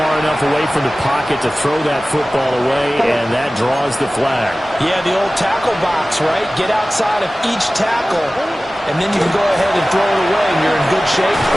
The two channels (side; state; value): both; normal; correlation 0.97